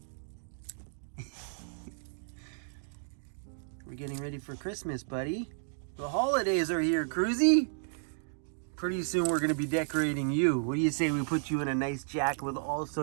We're getting ready for Christmas, buddy. The holidays are here, Cruzy. Pretty soon we're going to be decorating you. What do you say we put you in a nice jacket with all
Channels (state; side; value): silent; left; digital silence